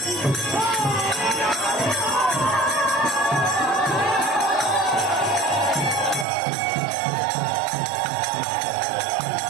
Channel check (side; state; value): left; drops out; at 6.2 s